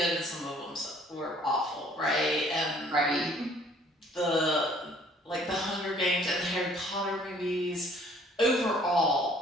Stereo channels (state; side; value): normal; both; correlation 0.58